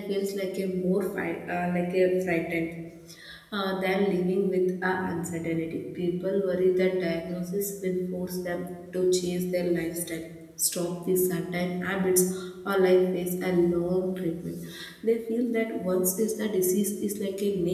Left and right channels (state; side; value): identical; both; correlation 1.00